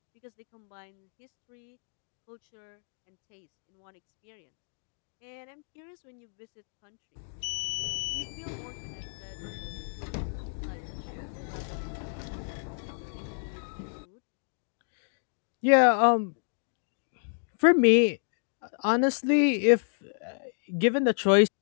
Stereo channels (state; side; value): silent; right; digital silence